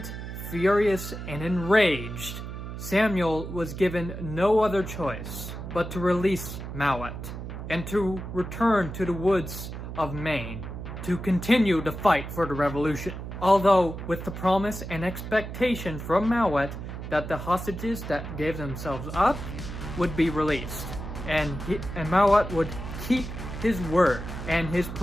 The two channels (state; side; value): noise; right; hum, 8 dB below the sound